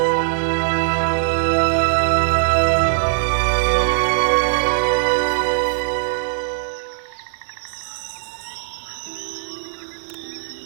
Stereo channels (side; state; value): left; silent; digital silence